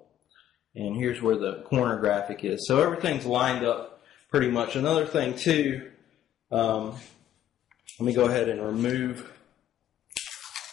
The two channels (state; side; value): quieter; right; 11.6 dB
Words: and here's where the corner graphic is. So everything's lined up pretty much. Another thing too, let me go ahead and remove